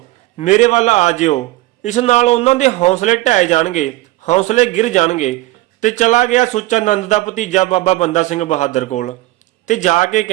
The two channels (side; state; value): left; quieter; 18.3 dB